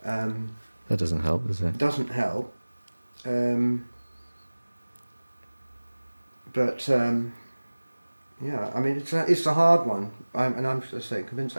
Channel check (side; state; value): both; inverted; correlation -1.00